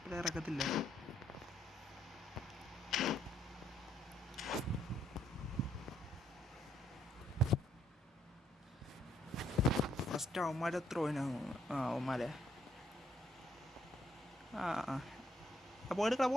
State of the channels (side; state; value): both; normal; correlation 0.71